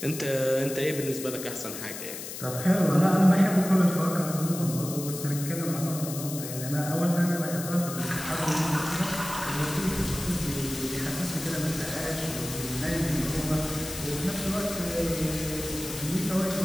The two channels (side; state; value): left; noise; hiss, 9 dB below the sound